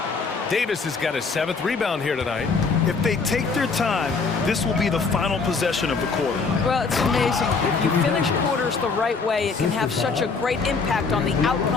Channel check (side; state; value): right; quieter; 4.7 dB